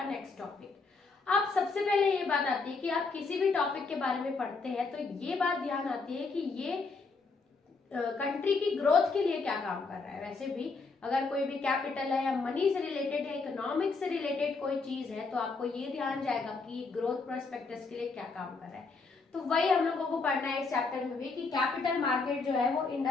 नेक्स्ट टॉपिक। अब सबसे पहले ये बात आती है कि आप किसी भी टॉपिक के बारे में पढ़ते हैं तो ये बात ध्यान आती है कि ये कंट्री की ग्रोथ के लिए क्या काम कर रहा है। वैसे भी अगर कोई भी कैपिटल है या मनी से रिलेटेड है, इकोनॉमिक्स से रिलेटेड कोई चीज है तो आपको ये ध्यान जाएगा कि ग्रोथ प्रोस्पेक्टस के लिए क्या काम कर रहा है। तो वही हम लोगों को पढ़ना है इस चैप्टर में भी कि कैपिटल मार्केट जो है वो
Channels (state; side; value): quieter; right; 4.2 dB